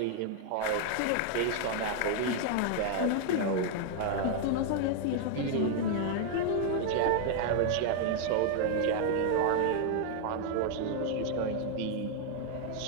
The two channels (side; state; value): both; different; correlation 0.00